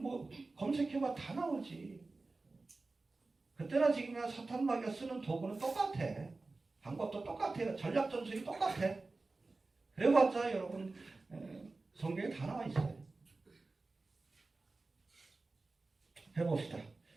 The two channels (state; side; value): quieter; left; 3.5 dB